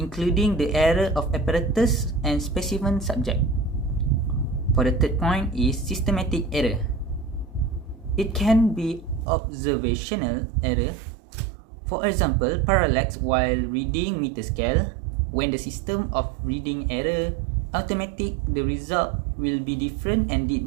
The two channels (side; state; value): left; drops out; at 9.2 s